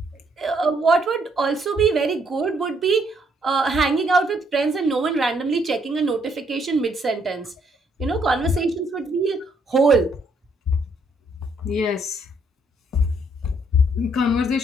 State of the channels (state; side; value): normal; both; correlation 0.70